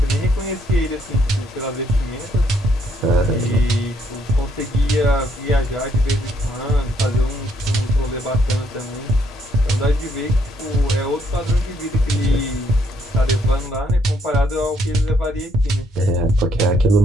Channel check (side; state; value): both; normal; correlation 0.71